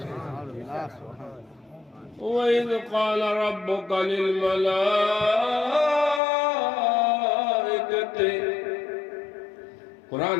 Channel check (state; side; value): drops out; right; at 6.2 s